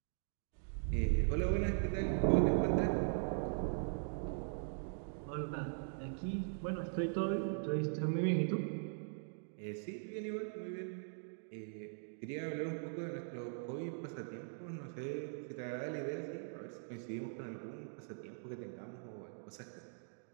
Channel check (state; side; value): silent; left; digital silence